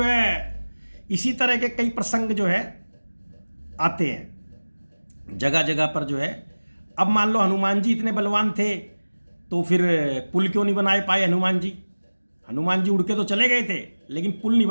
है इसी तरह के कई प्रसंग जो है आते हैं जगह जगह पर जो है। अब मान लो हनुमान जी इतने बलवान थे तो फिर पुल क्यों नहीं बनाए पाए हनुमान जी। हनुमान जी उड़ के तो चले गए थे लेकिन पुल नहीं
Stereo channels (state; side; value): inverted; both; correlation -1.00